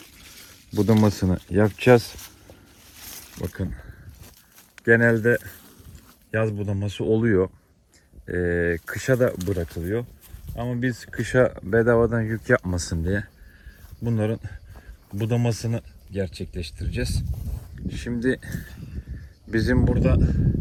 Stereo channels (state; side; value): identical; both; correlation 1.00